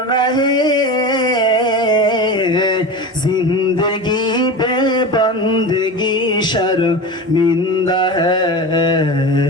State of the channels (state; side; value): normal; both; correlation 0.28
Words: হে, জিন্দেগি বে বন্দেগি শর্মিন্দা হে,